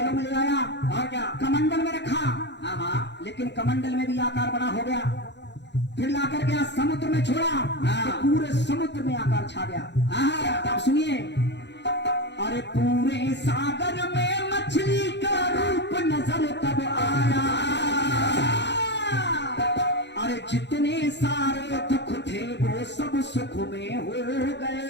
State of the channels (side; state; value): right; late; 0.51 ms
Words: में ले आया। और क्या? कमंडल में रखा। लेकिन कमंडल में भी आकार बड़ा हो गया। फिर लाकर के समुद्र में छोड़ा तो पूरे समुद्र में आकार छा गया। अब सुनिए, अरे पूरे सागर में मछली का रूप नजर तब आया। अरे जितने सारे दुख थे वो सब सुख में हो गए।